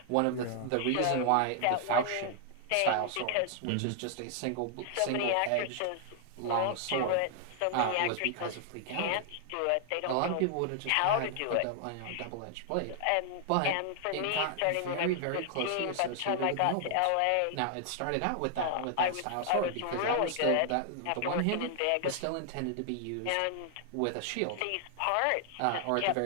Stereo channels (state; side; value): different; both; correlation 0.00